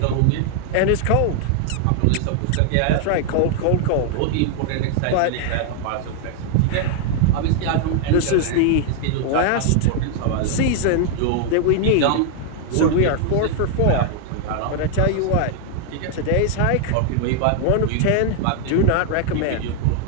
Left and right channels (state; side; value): different; both; correlation 0.00